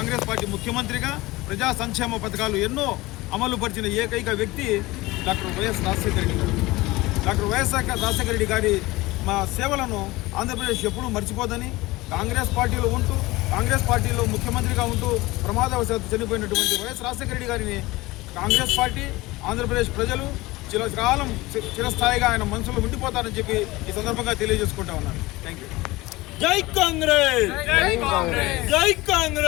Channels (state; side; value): quieter; right; 20.4 dB